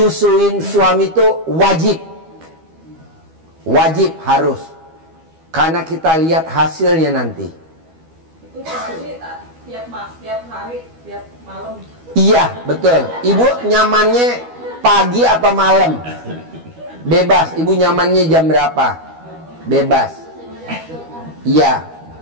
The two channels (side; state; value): left; late; 12 ms